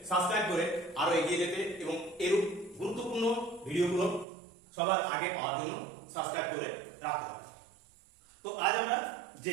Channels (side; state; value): left; drops out; at 4.2 s